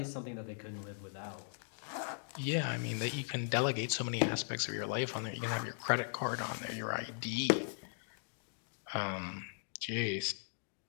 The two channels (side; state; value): right; silent; digital silence